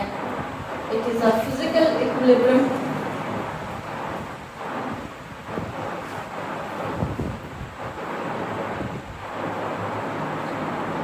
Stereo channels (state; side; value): identical; both; correlation 1.00